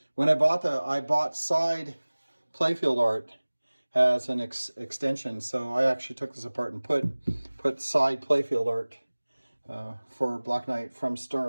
when I bought side playfield art as an extension. So I actually took this apart and put side playfield art for Black.knight from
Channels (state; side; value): inverted; both; correlation -1.00